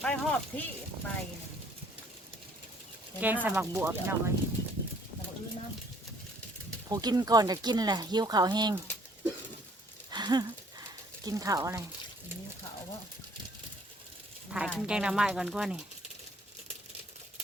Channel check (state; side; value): normal; both; correlation 0.59